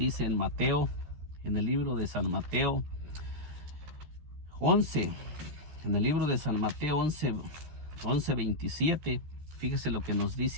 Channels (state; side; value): late; left; 13 ms